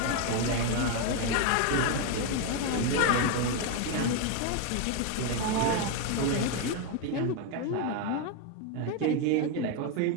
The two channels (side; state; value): both; different; correlation 0.01